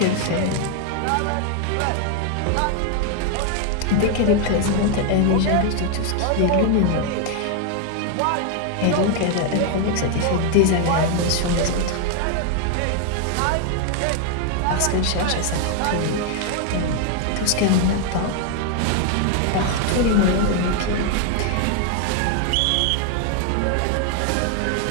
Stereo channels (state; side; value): different; both; correlation 0.00